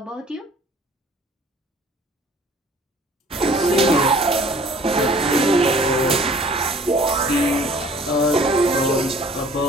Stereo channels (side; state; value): both; normal; correlation 0.52